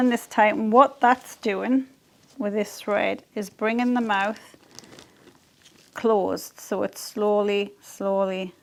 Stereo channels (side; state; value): both; identical; correlation 1.00